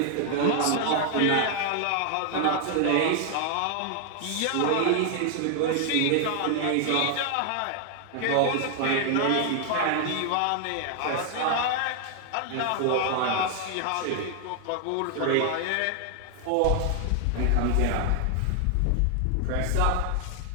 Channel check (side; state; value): both; different; correlation 0.00